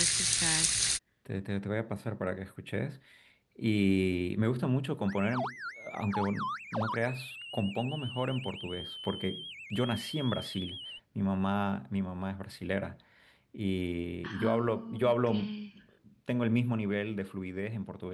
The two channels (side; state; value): both; identical; correlation 1.00